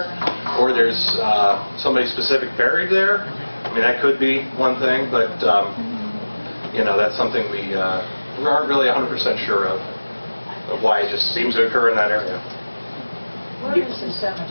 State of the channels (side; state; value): both; inverted; correlation -1.00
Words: or there's somebody specific buried there. I mean, that could be one thing, but that's something we aren't really 100% sure of why it just seems to occur in that area. Where is the